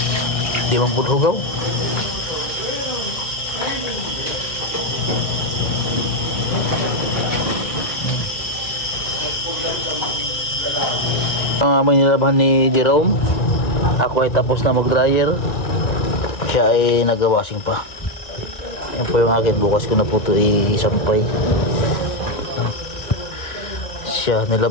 Di man pud hugaw. Ang aming nilabahan ni Jerome, ako ay tapos na mag-dryer, siya ay nag-washing pa. Yan po yung akin, bukas ko na po ito isampay. Siya,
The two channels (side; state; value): right; late; 2.1 ms